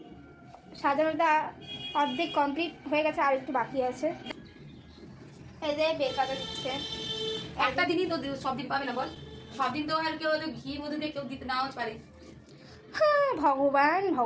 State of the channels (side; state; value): both; identical; correlation 1.00